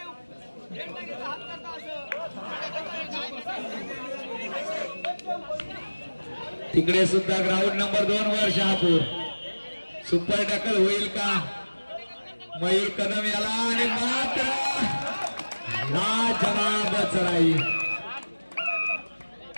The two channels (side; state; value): both; inverted; correlation -1.00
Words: तिकडे सुद्धा ग्राउंड नंबर 2 वर शहापूर सुपर टॅकल होईल का मयूर कदम याला आणि मात्र लाजवाब चढाई